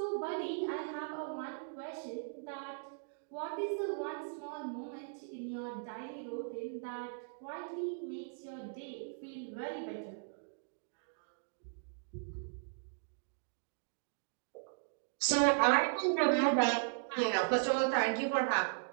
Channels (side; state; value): left; silent; digital silence